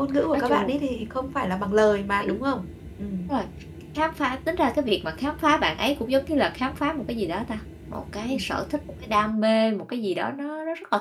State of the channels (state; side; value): identical; both; correlation 1.00